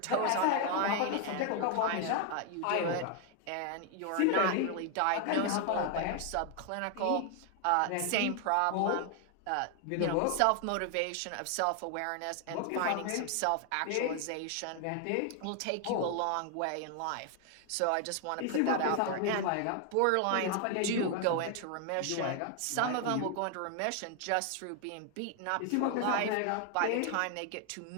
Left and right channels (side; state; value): both; different; correlation 0.00